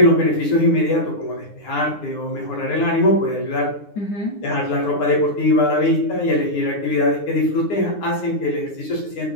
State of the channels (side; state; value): right; late; 9.7 ms